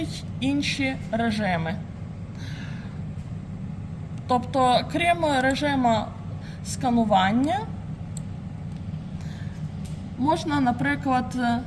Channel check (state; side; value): identical; both; correlation 1.00